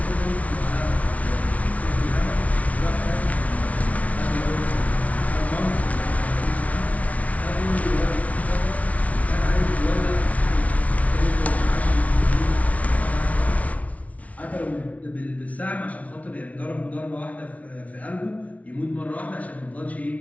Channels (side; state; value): right; late; 0.068 ms